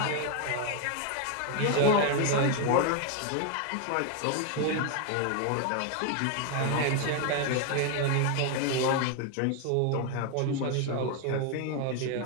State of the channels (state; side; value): different; both; correlation 0.01